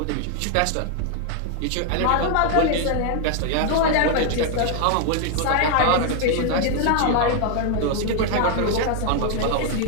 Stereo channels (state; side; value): different; both; correlation 0.00